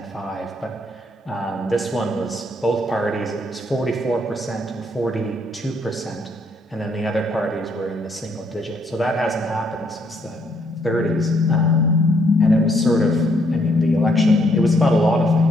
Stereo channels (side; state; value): both; normal; correlation 0.71